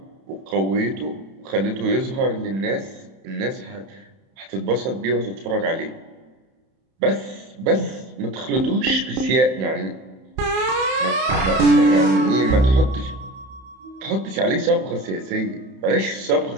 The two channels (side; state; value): left; late; 31 ms